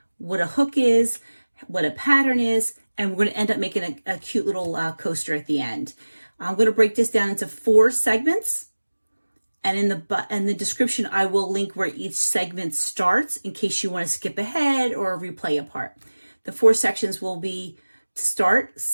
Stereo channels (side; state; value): both; inverted; correlation -1.00